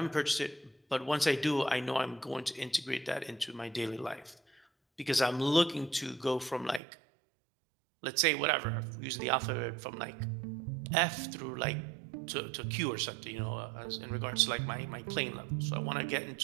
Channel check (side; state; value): left; drops out; at 6.8 s